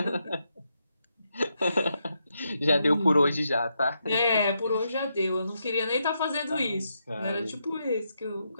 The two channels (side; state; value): both; inverted; correlation -0.82